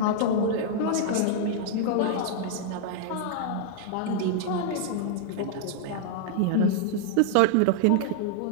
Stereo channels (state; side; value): different; both; correlation -0.01